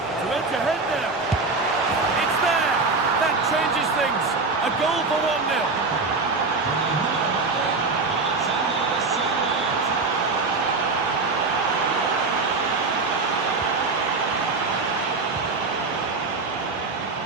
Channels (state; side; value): quieter; left; 3.9 dB